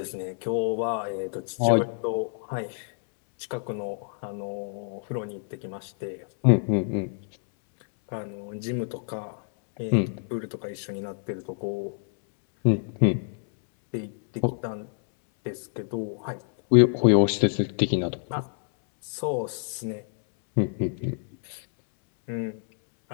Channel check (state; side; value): silent; right; 60 dB below the other